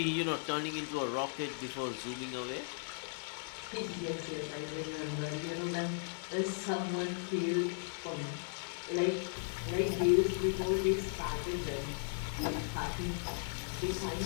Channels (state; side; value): silent; right; digital silence